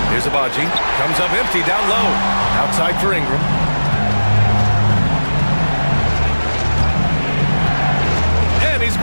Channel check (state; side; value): inverted; both; correlation -1.00